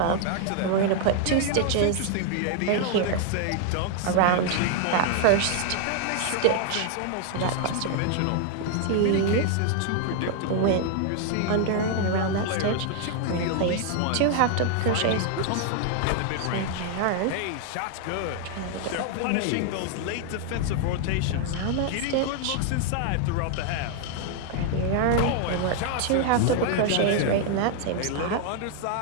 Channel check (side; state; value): both; different; correlation 0.00